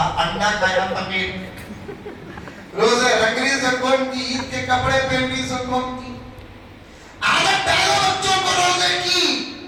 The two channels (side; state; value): both; identical; correlation 1.00